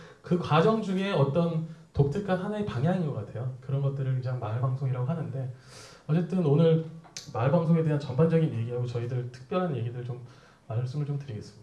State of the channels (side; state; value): both; identical; correlation 1.00